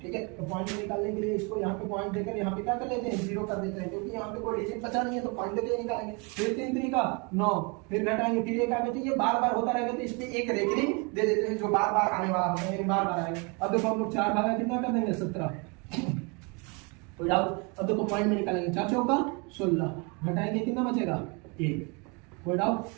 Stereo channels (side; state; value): left; quieter; 30.9 dB